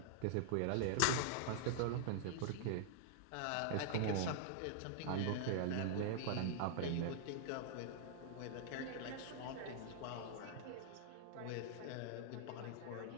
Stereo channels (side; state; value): both; different; correlation -0.01